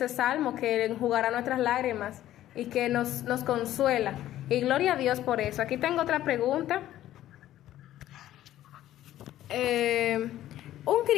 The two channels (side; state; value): right; quieter; 13.2 dB